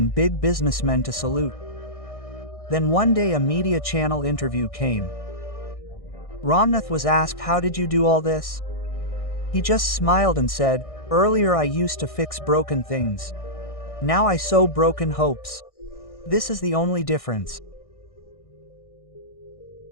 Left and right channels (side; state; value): right; late; 1.6 ms